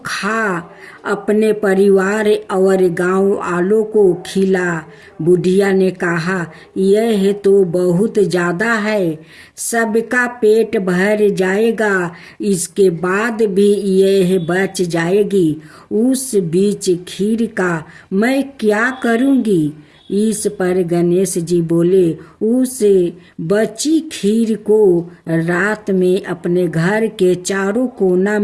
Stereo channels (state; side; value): identical; both; correlation 1.00